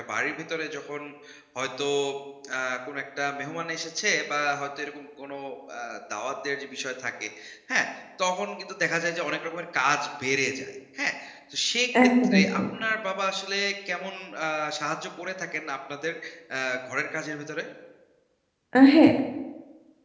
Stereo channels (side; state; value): both; identical; correlation 1.00